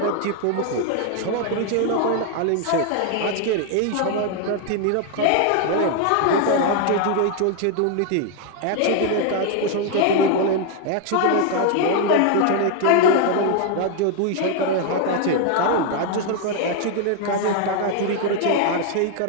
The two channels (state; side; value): different; both; correlation 0.00